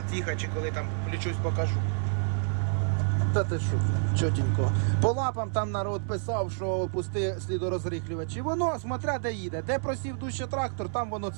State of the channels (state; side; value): silent; left; 59 dB below the other